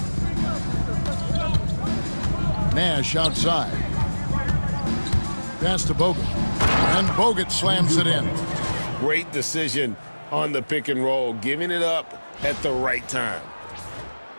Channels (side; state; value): both; inverted; correlation -1.00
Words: Nash outside. Pass to Bogut. And Bogut slams it in. Great decision on the pick and roll, giving it up at the right time.